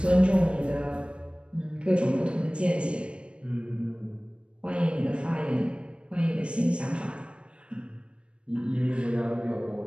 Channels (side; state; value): left; late; 0.058 ms